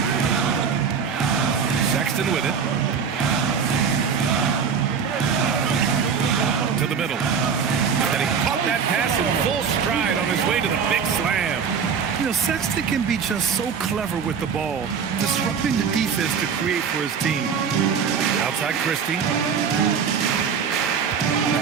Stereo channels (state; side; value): quieter; left; 6.5 dB